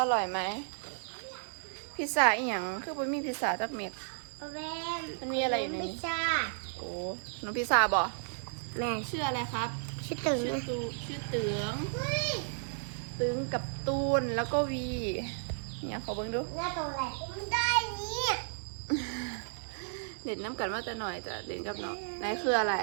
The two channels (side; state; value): left; silent; digital silence